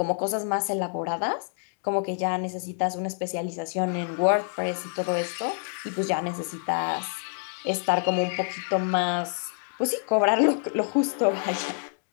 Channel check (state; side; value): silent; right; 60 dB below the other